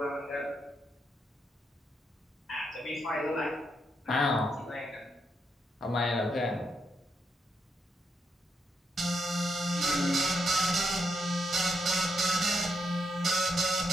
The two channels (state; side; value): normal; both; correlation 0.81